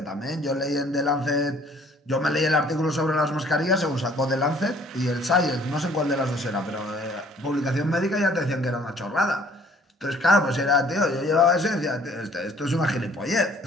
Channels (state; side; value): normal; both; correlation 0.57